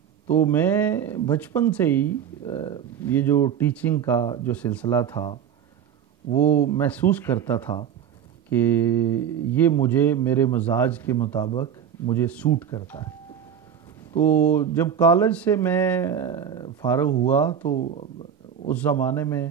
تو میں بچپن سے ہی یہ جو ٹیچنگ کا جو سلسلہ تھا وہ محسوس کرتا تھا کہ یہ مجھے میرے مزاج کے مطابق مجھے سوٹ کرتا ہے۔ تو جب کالج سے میں فارغ ہوا تو اس زمانے میں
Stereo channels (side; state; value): left; quieter; 8.5 dB